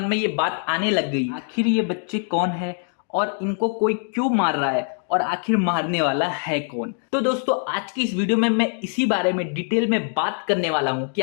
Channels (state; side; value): silent; right; 56 dB below the other